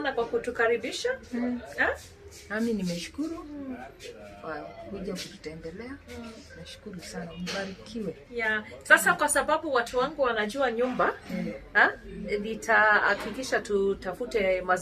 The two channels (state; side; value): identical; both; correlation 1.00